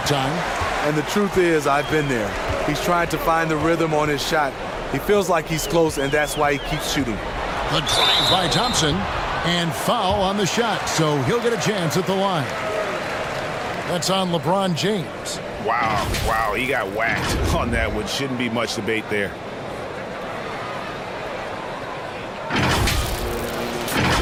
time. And the truth is, I've been there. He's trying to find the rhythm on his shot. He feels like he's close, and that's why he keeps shooting. The drive by Thompson, and foul on the shot, so he'll get a chance at the line. That's on LeBron James. Wow, he got whacked on that one. Shouldn't be much debate there.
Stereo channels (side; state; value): both; identical; correlation 1.00